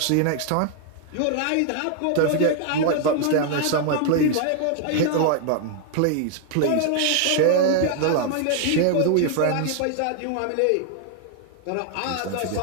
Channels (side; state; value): both; different; correlation 0.00